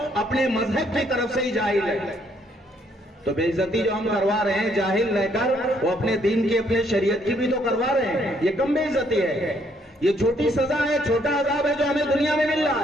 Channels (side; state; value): both; normal; correlation 0.69